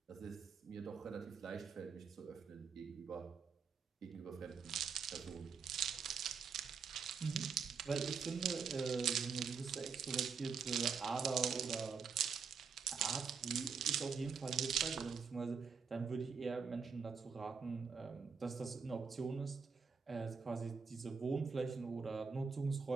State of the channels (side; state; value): left; quieter; 5.8 dB